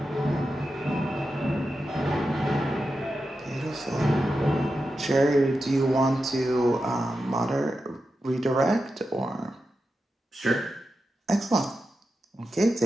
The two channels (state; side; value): normal; both; correlation 0.90